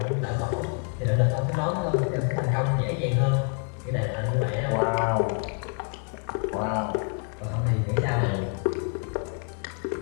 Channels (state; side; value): quieter; right; 39.5 dB